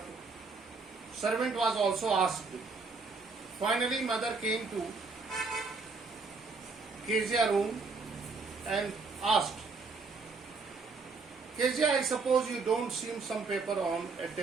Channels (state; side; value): quieter; left; 4.3 dB